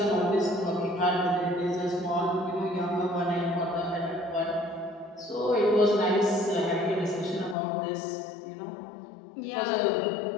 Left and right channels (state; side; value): drops out; right; at 7.6 s